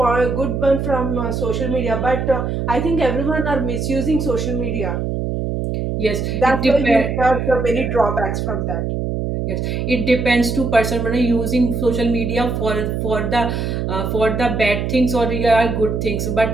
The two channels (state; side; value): noise; right; hum, 2 dB below the sound